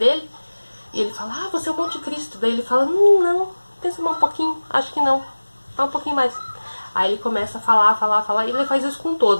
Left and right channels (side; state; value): both; inverted; correlation -1.00